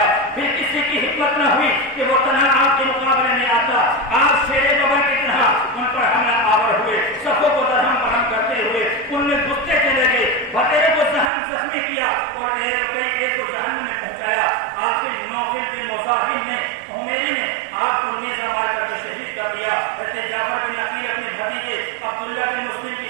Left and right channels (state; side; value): drops out; left; at 11.3 s